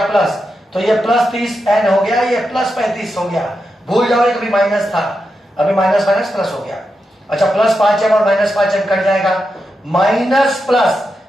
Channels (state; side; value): normal; both; correlation 0.87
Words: प्लस। तो ये प्लस 30n हो गया, ये प्लस 35 हो गया। भूल जाओ कभी माइनस था, अभी माइनस माइनस प्लस हो गया। अच्छा, प्लस 5m और माइनस 5m कट जाएगा, माइनस प्लस,